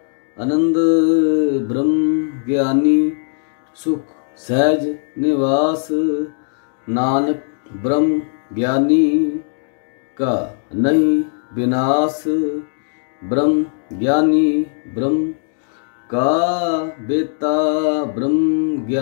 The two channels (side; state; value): right; silent; digital silence